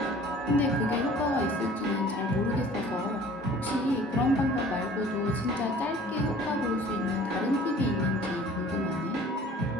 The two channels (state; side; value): normal; both; correlation 0.49